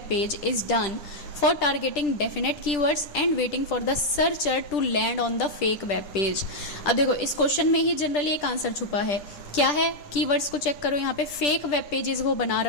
page is done for targeting definite keywords and waiting for the searcher to land on the fake web page। अब देखो इस क्वेश्चन में ही जनरली एक आंसर छुपा है। क्या है, कीवर्ड्स को चेक करो। यहाँ पे फेक वेब पेजेस वो बना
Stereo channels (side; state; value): right; late; 10 ms